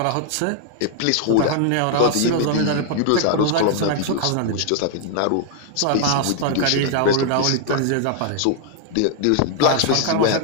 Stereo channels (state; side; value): different; both; correlation 0.00